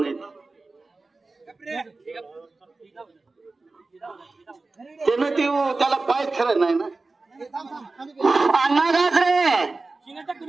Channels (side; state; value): left; quieter; 3.5 dB